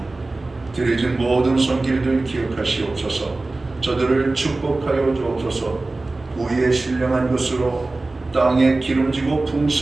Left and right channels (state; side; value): quieter; left; 3.2 dB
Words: 드려진 모든 손길들 기억하시옵소서. 저들을 축복하여 주옵소서. 우리의 신령한 것으로 땅에 기름지고